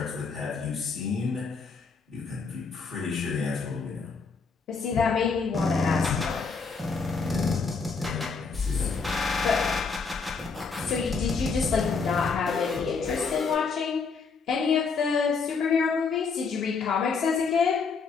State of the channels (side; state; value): right; quieter; 4.9 dB